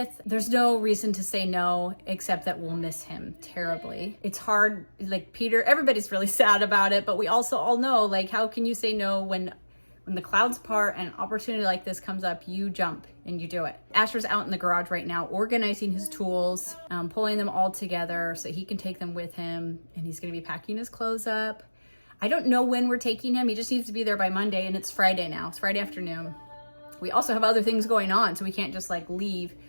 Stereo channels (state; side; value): inverted; both; correlation -1.00